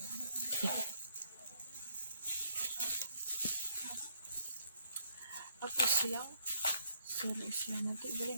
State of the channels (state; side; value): inverted; both; correlation -0.70